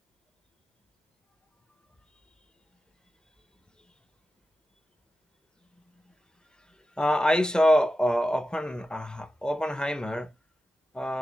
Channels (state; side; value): normal; both; correlation 0.92